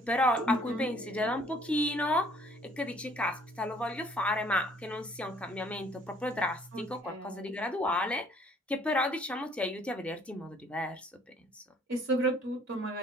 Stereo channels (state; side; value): normal; both; correlation 0.59